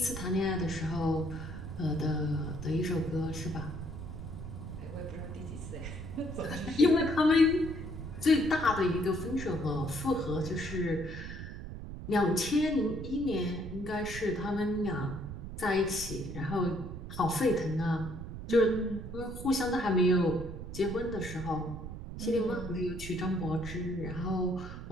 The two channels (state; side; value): noise; right; rumble, 9 dB below the sound